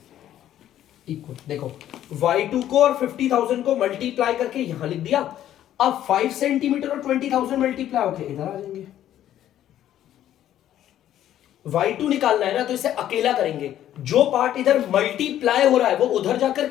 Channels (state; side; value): quieter; right; 11.8 dB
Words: इक्वल देखो y2 को और 50,000 को मल्टीप्लाई करके यहां लिख दिया। अब 5 सेंटीमीटर और 20,000 मल्टीप्लाई होके इधर आ जाएंगे। y2 निकालना है ना, तो इसे अकेला करेंगे, जो पार्ट इधर मल्टीप्लाई हो रहा है वो उधर जाकर